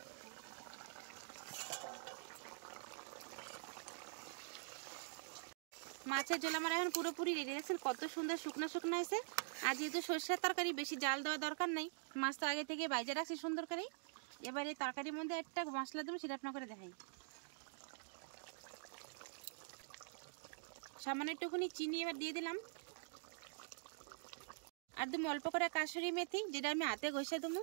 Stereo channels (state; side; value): silent; left; digital silence